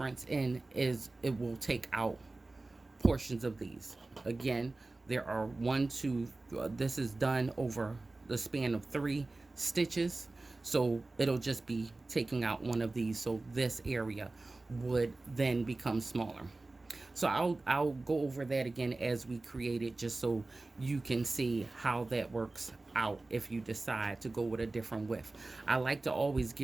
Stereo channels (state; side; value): quieter; left; 3.2 dB